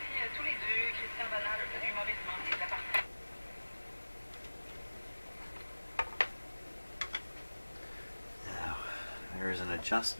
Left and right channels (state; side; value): inverted; both; correlation -1.00